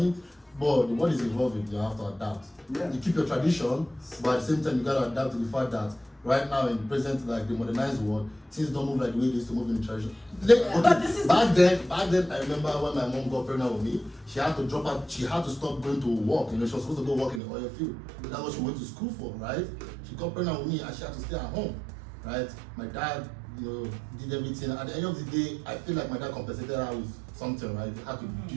But the world is evolving, you have to adapt. Yeah. You keep your tradition, but at the same time, you gotta adapt to the fact that right now in present, like the modernized world, things don't move like the way they used to move in the tradition. But this is back then, I remember when my mom got pregnant with me, she had to drop out, she had to stop going to work, you know, she was supposed to go work in the oil field. That's what she went to school for, right? She got pregnant with me and she had to stay at home, right? My dad, you know, did everything. At the end of the day, I feel like my dad compensated her with something, right? He had to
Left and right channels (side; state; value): left; drops out; at 17.4 s